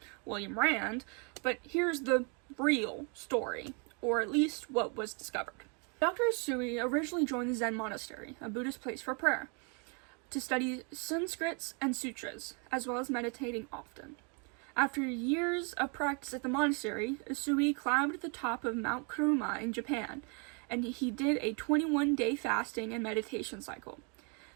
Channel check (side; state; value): left; quieter; 36.2 dB